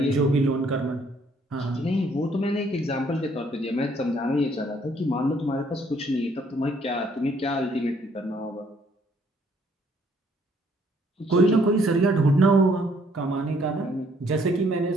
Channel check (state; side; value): normal; both; correlation 0.65